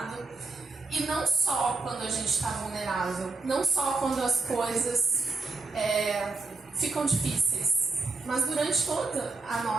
E não só quando a gente está vulnerável, não só quando as coisas ficam difíceis, mas durante toda a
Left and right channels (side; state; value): left; quieter; 3.7 dB